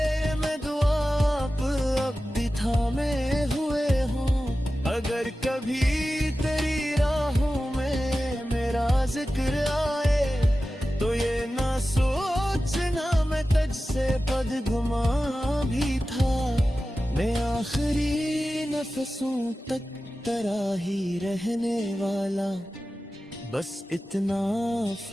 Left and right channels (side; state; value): both; normal; correlation 0.94